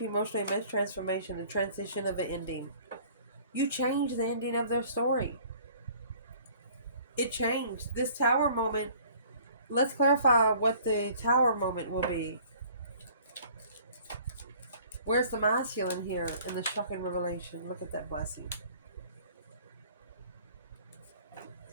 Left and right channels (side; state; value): both; inverted; correlation -0.53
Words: emotional immense transformation, the transition of an ending. You changed the ending of their story. It changed. This Tower moment, let's clarify what the Tower moment will be. Where's the masculine here in the shocking revelation? Look at that blessing.